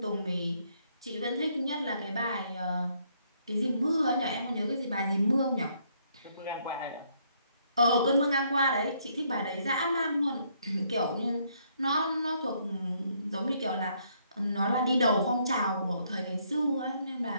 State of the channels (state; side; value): inverted; both; correlation -0.70